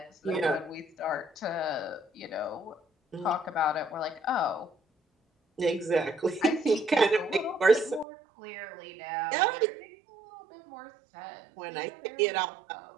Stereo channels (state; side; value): drops out; left; at 8.1 s